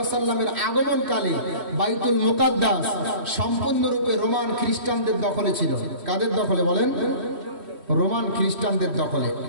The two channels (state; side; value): late; left; 3.1 ms